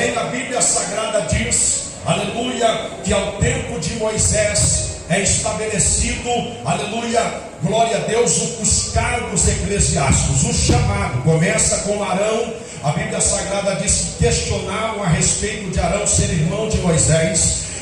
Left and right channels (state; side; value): identical; both; correlation 1.00